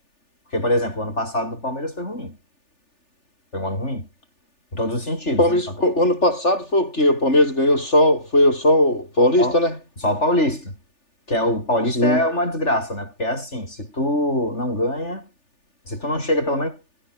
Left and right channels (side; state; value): right; late; 3.4 ms